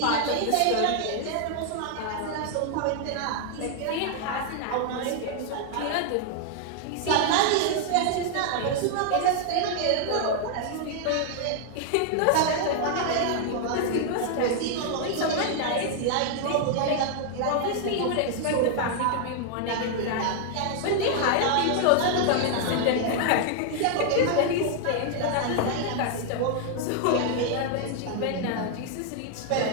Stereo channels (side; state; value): both; different; correlation 0.00